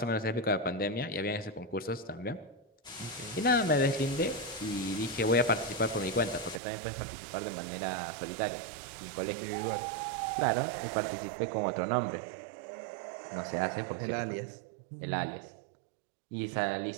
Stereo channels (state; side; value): drops out; left; at 6.6 s